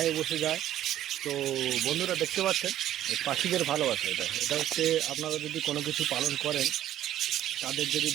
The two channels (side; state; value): left; quieter; 12.4 dB